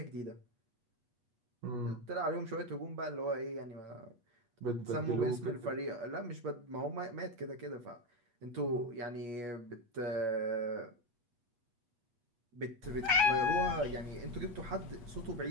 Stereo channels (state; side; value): late; left; 8.3 ms